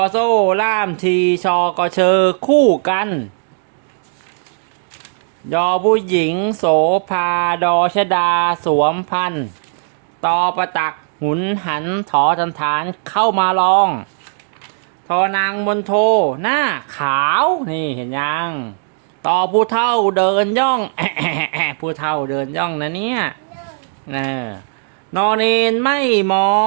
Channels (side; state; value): left; silent; digital silence